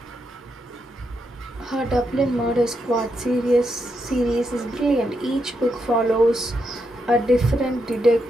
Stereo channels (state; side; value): normal; both; correlation 0.82